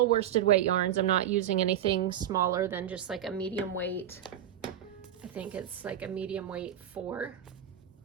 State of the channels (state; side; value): quieter; left; 10.4 dB